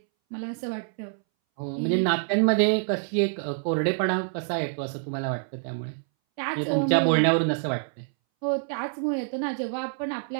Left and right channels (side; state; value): left; silent; 61 dB below the other